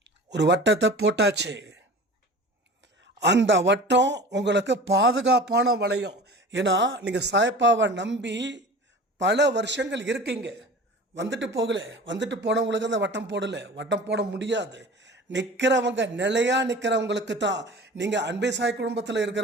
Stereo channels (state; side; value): normal; both; correlation 0.38